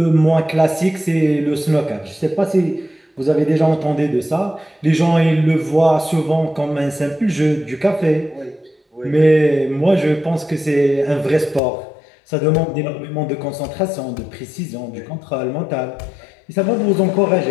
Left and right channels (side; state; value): right; drops out; at 11.6 s